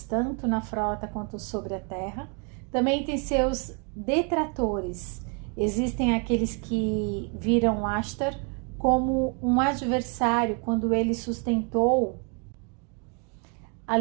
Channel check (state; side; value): quieter; left; 36.3 dB